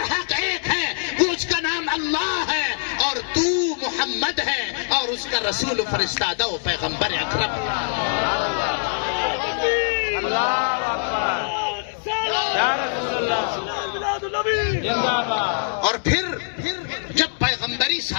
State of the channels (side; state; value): right; silent; 63 dB below the other